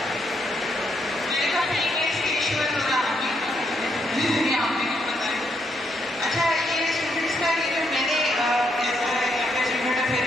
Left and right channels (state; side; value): normal; both; correlation 0.76